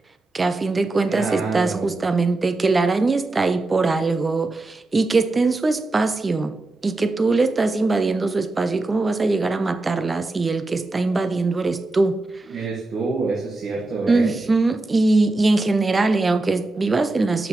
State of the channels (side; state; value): left; quieter; 3.0 dB